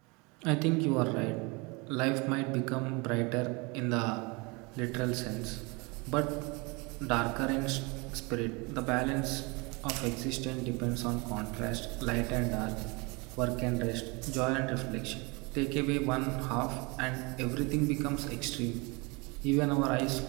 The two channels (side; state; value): left; quieter; 28.0 dB